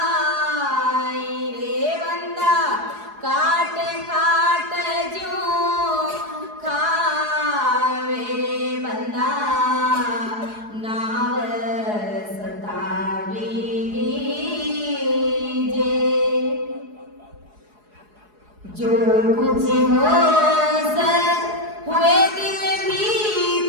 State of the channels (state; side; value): late; left; 4.8 ms